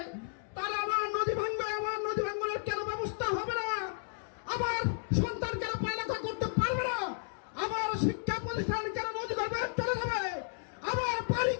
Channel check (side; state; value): right; silent; digital silence